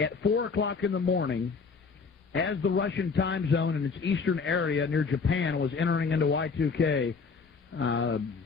4 o'clock in the morning, as the Russian time zone in its eastern area near Japan was entering into Y2K,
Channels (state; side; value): quieter; right; 5.0 dB